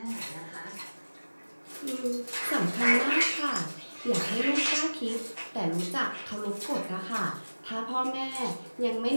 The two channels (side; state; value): both; inverted; correlation -1.00